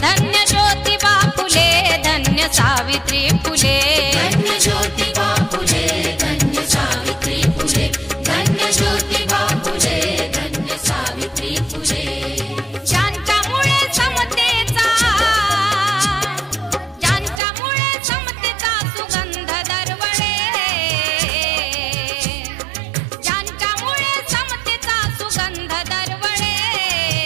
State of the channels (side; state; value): left; drops out; at 17.4 s